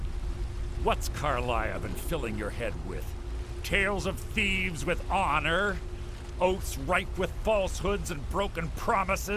What's Carlia been filling your head with? Tales of thieves with honor? Oaths ripe with falsehoods and broken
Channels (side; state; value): both; identical; correlation 1.00